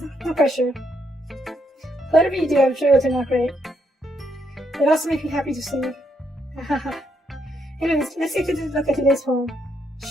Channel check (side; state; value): both; normal; correlation 0.76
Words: no pressure. Whatever you do, I'm sure it'll turn out great. It also makes me happy to see. Anyways, let's take a look at today's poem.